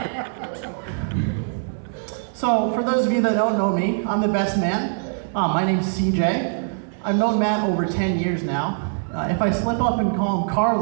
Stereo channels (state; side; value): silent; left; 64 dB below the other